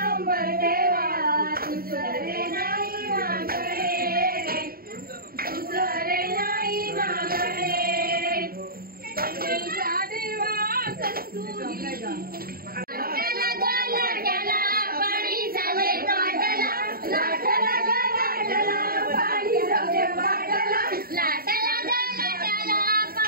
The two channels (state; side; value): late; left; 0.43 ms